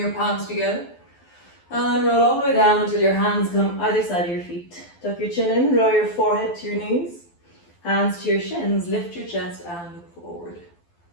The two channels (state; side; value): late; right; 12 ms